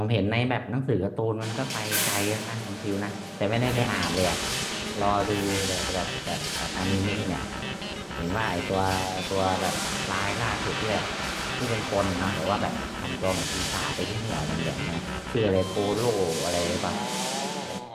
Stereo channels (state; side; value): identical; both; correlation 1.00